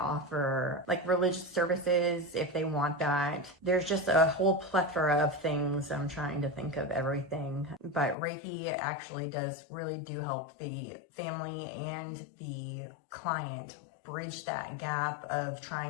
religious services if they want that. There's just a whole plethora of things. I'm trying to think of everything, but Reiki actually really do help the family and the client bridge that gap of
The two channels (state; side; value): drops out; right; at 8.2 s